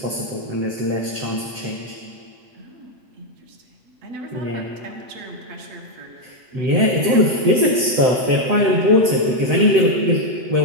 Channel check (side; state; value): left; late; 8.0 ms